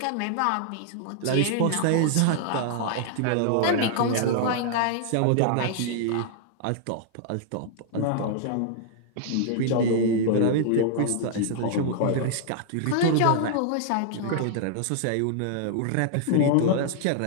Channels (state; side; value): different; both; correlation -0.01